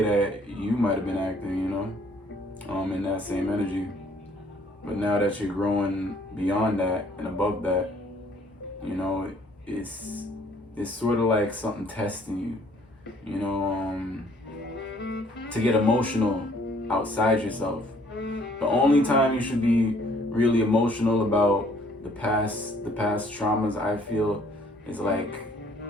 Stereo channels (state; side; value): normal; both; correlation 0.61